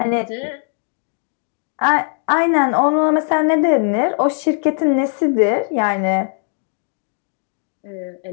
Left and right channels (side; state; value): right; silent; 60 dB below the other